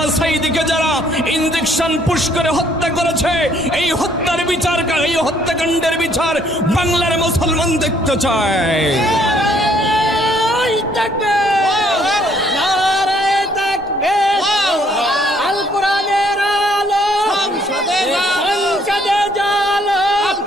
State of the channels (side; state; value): both; normal; correlation 0.65